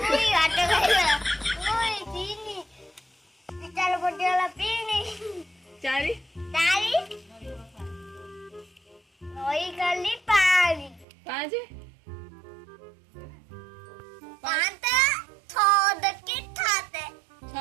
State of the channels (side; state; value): left; drops out; at 11.1 s